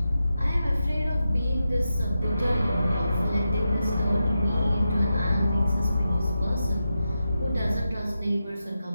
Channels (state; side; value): inverted; both; correlation -0.89